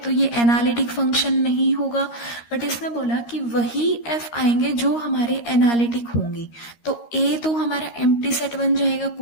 ये एनालिटिक फंक्शन नहीं होगा, बट इसने बोला कि वही f आएंगे जो हमारे एनालिटिक होंगे। तो a तो हमारा एम्प्टी सेट बन जाएगा,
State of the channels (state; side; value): late; right; 13 ms